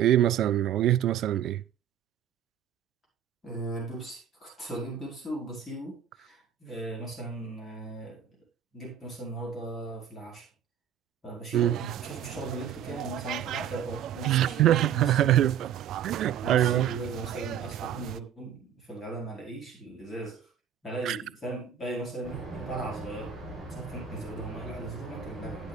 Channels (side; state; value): left; quieter; 9.2 dB